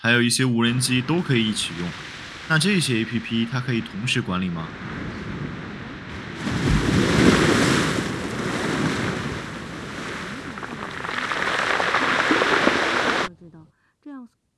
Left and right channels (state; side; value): identical; both; correlation 1.00